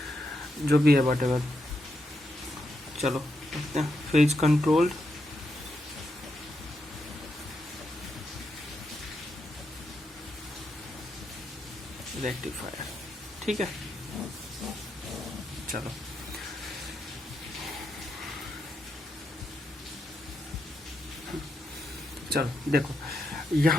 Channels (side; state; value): both; normal; correlation 0.83